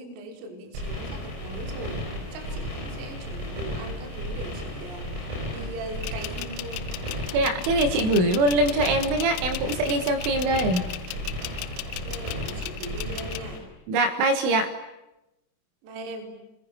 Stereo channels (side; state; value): left; late; 28 ms